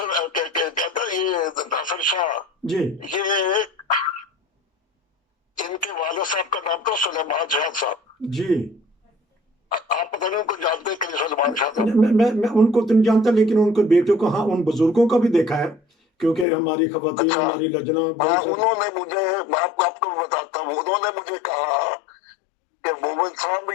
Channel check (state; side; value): drops out; right; at 16.4 s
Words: कहता है, ये नासिर शाह, जी ये इनके वाले साहब का नाम था सुलेमान शाह साहब। जी। आप पता नहीं उनको जानते हैं कि नहीं सुलेमान शाह साहब? मैं उनको तो नहीं जानता, लेकिन उनके बेटों को, हाँ, उन बुजुर्गों का भी देखा है, क्योंकि हमारी खवातीन, अच्छा। हमारी लजना हाँ, बहुत सारी। उन्होंने मुझे, मैं आपको बताता हूँ, उन्होंने मुझे कहा कि मोमिन साहब,